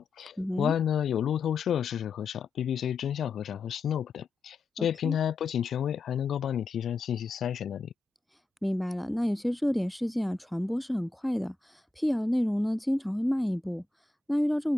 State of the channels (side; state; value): right; quieter; 3.7 dB